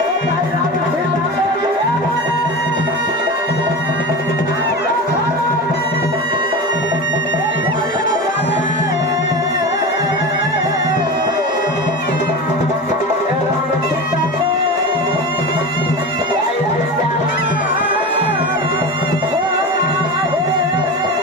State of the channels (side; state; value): both; normal; correlation 0.27